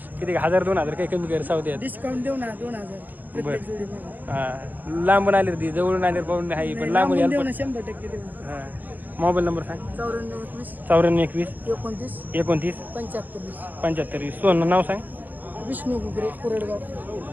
किती 1000-2000 काही कमी कर सावते डिस्काउंट देऊ ना 2000 प्रत्येक जोडीमध्ये. हां लांबून आले ती जवळून आले पाहून आहे पण लांबून देऊ यायला ना 100% देऊ ना. हां मोबाईल नंबर सांग 94 21 94 21 29 29 75 75 सोनं नाव सांग विष्णू गुगरे कुरडगाव.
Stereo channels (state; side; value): late; left; 0.084 ms